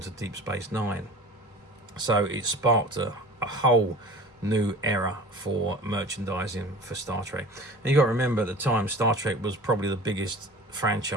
Deep Space Nine. So it sparked a whole new era for merchandising for Star Trek. And you got to remember, at the time, Star Trek was probably the biggest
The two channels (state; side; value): normal; both; correlation 0.40